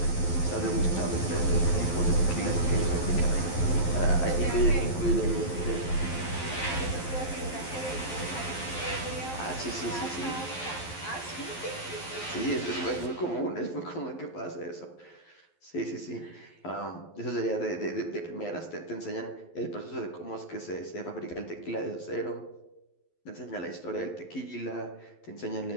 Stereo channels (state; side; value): late; right; 11 ms